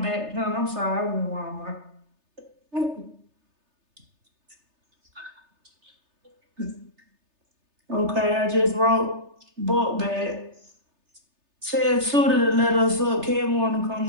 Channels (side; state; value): left; late; 3.3 ms